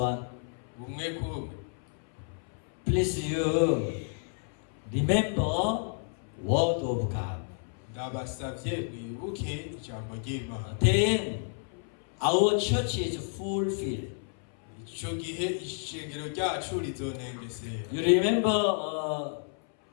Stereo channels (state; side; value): silent; right; 57 dB below the other